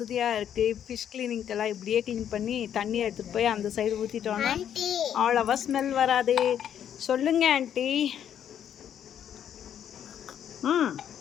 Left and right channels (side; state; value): right; quieter; 9.5 dB